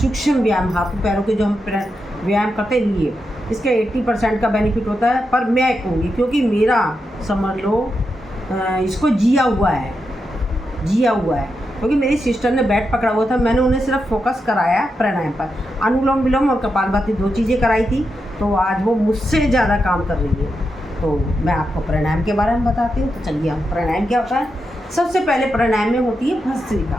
व्यायाम, हाथों पैरों के जो हम व्यायाम करते हैं लिए, इसका 80% का बेनिफिट होता है। पर मैं कहूँगी क्योंकि मेरा समझ लो इसको जिया हुआ है, क्योंकि मेरी सिस्टर ने बैट पकड़ा हुआ था, मैंने उन्हें सिर्फ फोकस कराया प्राणायाम पर। अनुलोम विलोम और कपालभाति 2 चीज़ें कराई थी, तो आज वो मुझसे ज़्यादा काम कर रही है। तो मैं आपको प्राणायाम के बारे में बताती हूँ। तो चलिए, हम प्राणायाम क्या होता है। सबसे पहले प्राणायाम में होती है भस्त्रिका।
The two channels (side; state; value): both; normal; correlation 0.86